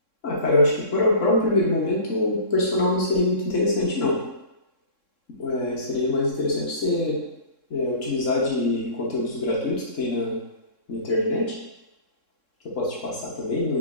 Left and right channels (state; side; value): late; right; 3.7 ms